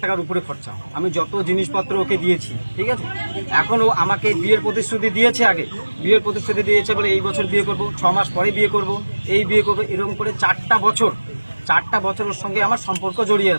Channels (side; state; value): both; inverted; correlation -1.00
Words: টাকার উপরে খরচা। আমি যত জিনিসপত্র ওকে দিয়েছি, ঠিক আছে। এখন ও আমাকে বিয়ের প্রতিশ্রুতি দিয়েছে, আগে বিয়ের প্রতিশ্রুতি দিয়েছে বলে এই বছর বিয়ে করব, 6 মাস পরে বিয়ে করব, এই বিয়ে করবো, এরকম করে 4টা বছর ওর সঙ্গে আমার সম্পর্ক জড়িয়ে